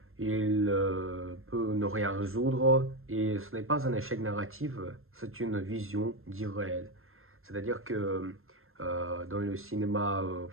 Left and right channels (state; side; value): late; left; 0.61 ms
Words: il peut ne rien résoudre, et ce n'est pas un échec narratif, c'est une vision d'irréel. C'est-à-dire que dans le cinéma